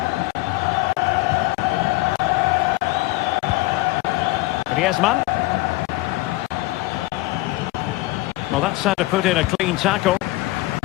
Griezmann. Well, that's how to put in a clean tackle.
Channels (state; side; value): quieter; right; 19.7 dB